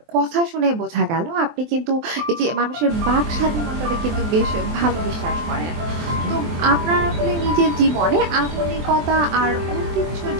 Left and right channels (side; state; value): left; late; 23 ms